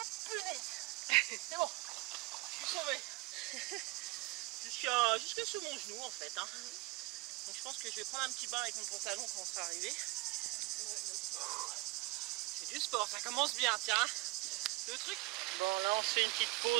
punaise. C'est bon. Je suis sauvé. Jusqu'à sous mon genou en fait. Hein. Donc je pense que je vais prendre un petit bain avec mon pantalon quand on sera arrivé. C'est du sport, ça commence bien, tiens. Le truc. Bon, là on se fait une petite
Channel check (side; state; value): left; quieter; 21.9 dB